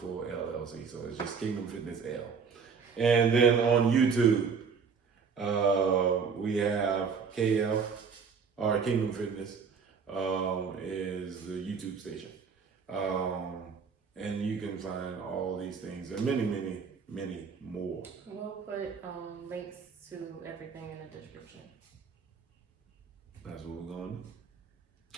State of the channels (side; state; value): left; quieter; 5.9 dB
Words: LLC, so it's just Kingdom Fitness L. And then on YouTube, we have KF or Kingdom Fitness is the YouTube station. And you can find all these things and many, many, many more. We'll put links to everything in the description. That's what we're going to do.